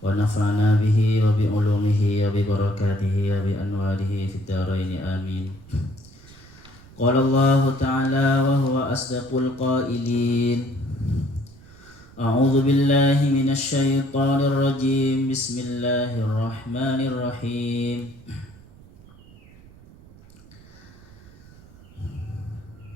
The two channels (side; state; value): right; noise; rumble, 22 dB below the sound